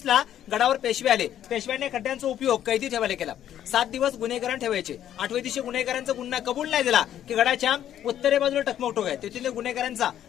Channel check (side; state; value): right; quieter; 11.0 dB